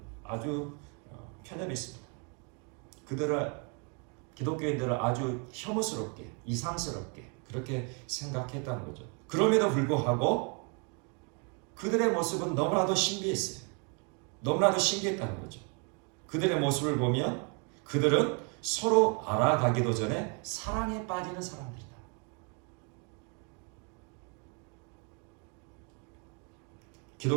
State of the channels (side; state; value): left; quieter; 36.3 dB